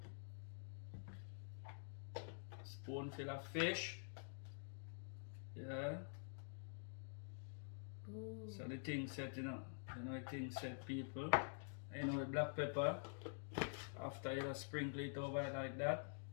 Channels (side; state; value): right; silent; digital silence